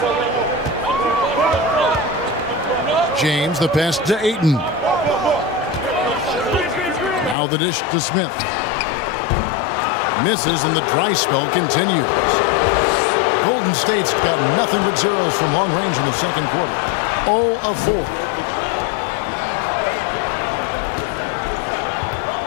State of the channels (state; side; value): drops out; right; at 7.4 s